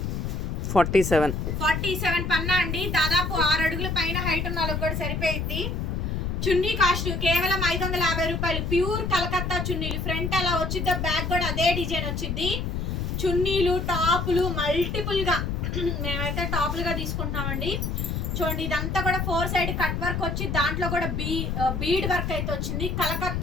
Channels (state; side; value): noise; left; rumble, 2 dB below the sound